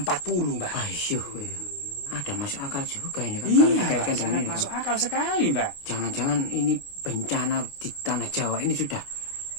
Mbak. Ayo, ada masuk akal juga ini kan Iya, kalau Mbak, dikaitkan dengan sangat ini masuk kan. akal sekali, Mbak. Jangan-jangan ini bencana di tanah Jawa ini sudah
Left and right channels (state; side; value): late; right; 28 ms